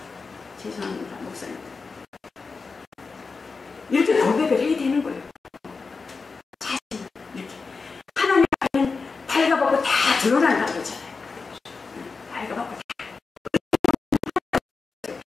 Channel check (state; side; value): quieter; right; 4.5 dB